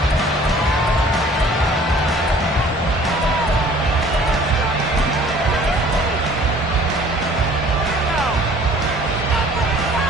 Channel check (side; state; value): both; normal; correlation 0.52